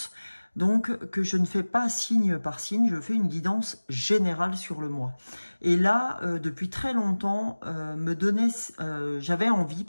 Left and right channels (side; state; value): both; inverted; correlation -1.00